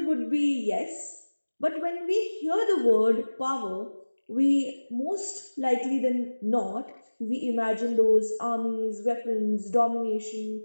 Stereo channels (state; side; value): inverted; both; correlation -1.00